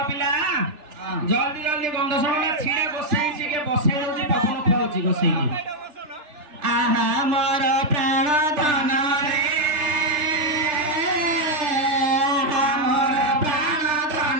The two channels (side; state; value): left; late; 3.4 ms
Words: पिला जल्दी जल्दी गंध सड़ा छिड़ा बसई के बसई होची पवन खाउची बसई आहा मोर प्राण धन रे मोर प्राण